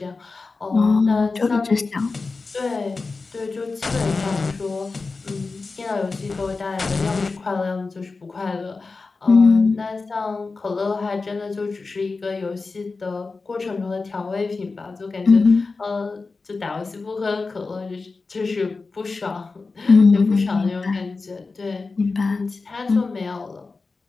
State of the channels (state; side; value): quieter; right; 4.0 dB